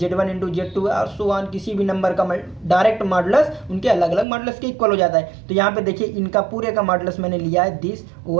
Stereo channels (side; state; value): left; drops out; at 4.2 s